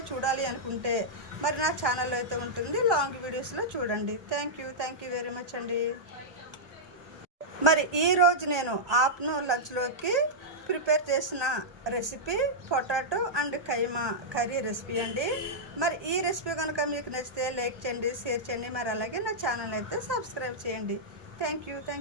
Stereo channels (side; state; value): left; late; 1.2 ms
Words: చూడాలి అనుకుంటే మరి నా ఛానల్లో అయితే ఉంటుంది, లాంగ్ వీడియోస్లో చూడండి. థ్యాంక్ యూ వెరీ మచ్ అండి. మరి ఈరోజు నేను ఆఫ్టర్నూన్ లంచ్లోకి ప్రిపేర్ చేసిన recipe potato and keema curry recipe అండి. మరి ఈ రెసిపీ కనుక మీకు నచ్చితే లైక్ చేయండి, షేర్ చేయండి. మరి అలాగే నా ఛానల్ అయితే సబ్స్క్రైబ్ చేయండి. థ్యాంక్